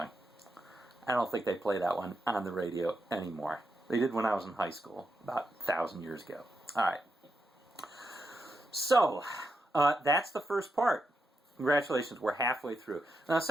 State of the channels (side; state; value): both; normal; correlation 0.85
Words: I don't think they play that one on the radio anymore. They did when I was in high school, about 1,000 years ago. All right. So, that's the first part. Congratulations, we're halfway through. Now, the